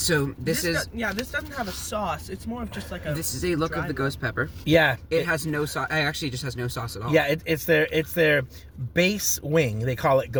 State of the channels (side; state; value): both; identical; correlation 1.00